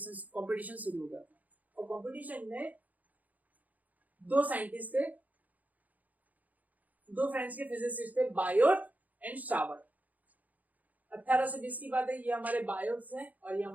शुरू हो गया था, और कंपटीशन में दो साइंटिस्ट थे, दो फ्रेंच के फिजिसिस्ट थे, बायोट एंड सावर्ट। 1820 की बात है, ये हमारे बायोट हैं और ये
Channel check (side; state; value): left; late; 0.078 ms